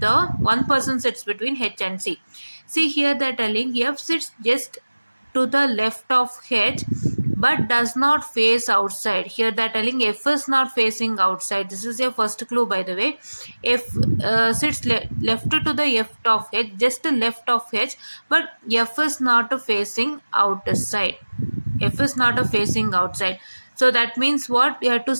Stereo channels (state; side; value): inverted; both; correlation -1.00